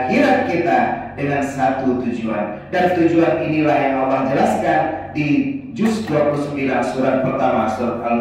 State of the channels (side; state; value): both; identical; correlation 1.00